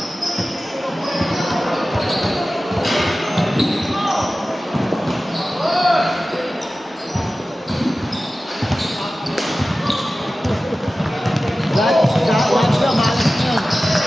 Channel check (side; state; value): both; normal; correlation 0.95